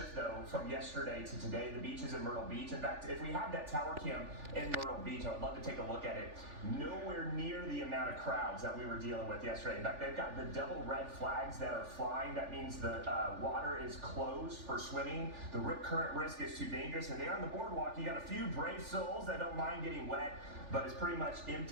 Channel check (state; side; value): late; left; 3.4 ms